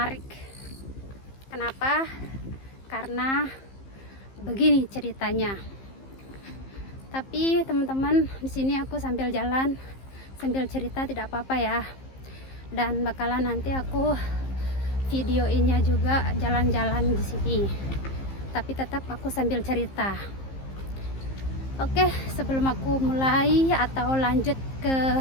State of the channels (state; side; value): late; right; 15 ms